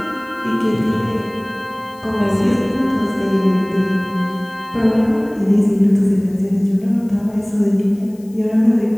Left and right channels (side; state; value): left; noise; hiss, 28 dB below the sound